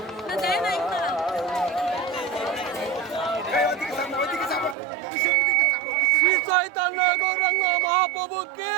না দেয় নাই না। শ্রী চৈতন্য গৌরাঙ্গ মহাপ্রভুকে,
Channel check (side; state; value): left; drops out; at 4.8 s